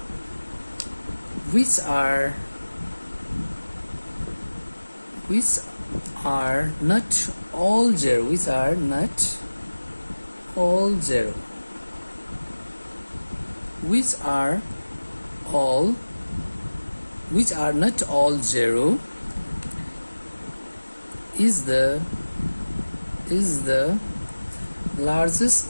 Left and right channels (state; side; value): inverted; both; correlation -1.00